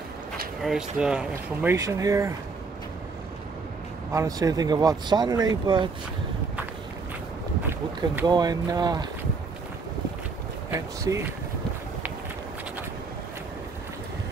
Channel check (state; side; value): quieter; left; 4.4 dB